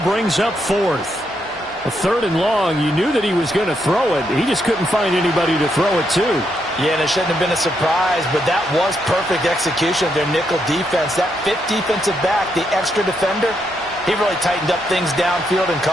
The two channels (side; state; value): both; normal; correlation 0.79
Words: up 4th. A 3rd and long, you knew that he was going to throw it. He just couldn't find anybody to throw it to. Yeah, and it shouldn't have been a surprise, but that was perfect execution of their nickel defense. That 5th defensive back, the extra defender, he really tightened up things downfield in